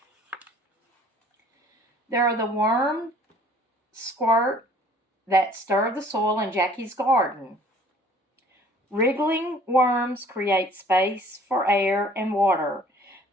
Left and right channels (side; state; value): both; normal; correlation 0.54